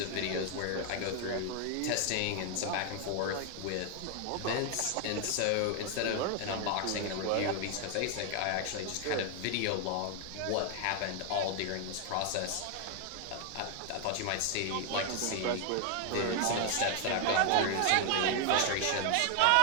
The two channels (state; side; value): different; both; correlation 0.01